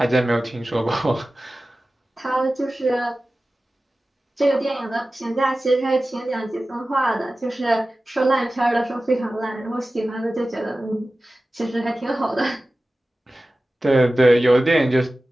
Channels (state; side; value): normal; both; correlation 0.96